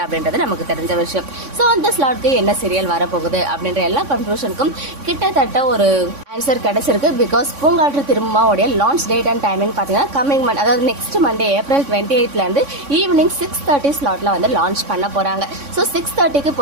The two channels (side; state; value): left; late; 3.6 ms